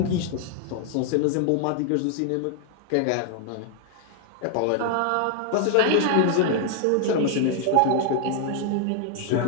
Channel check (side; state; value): both; different; correlation 0.00